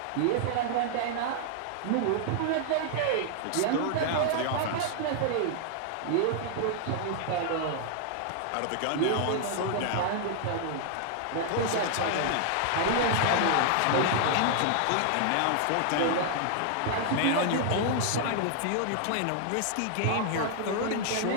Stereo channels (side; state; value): both; different; correlation -0.01